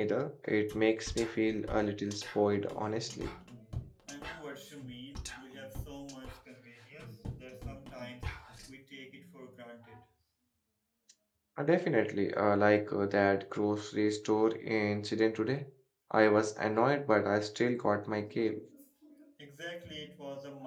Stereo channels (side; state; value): both; identical; correlation 1.00